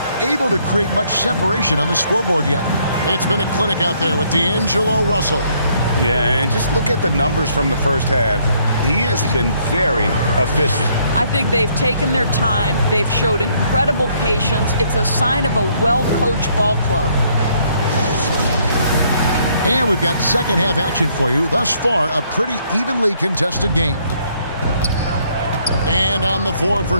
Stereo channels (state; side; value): inverted; both; correlation -0.67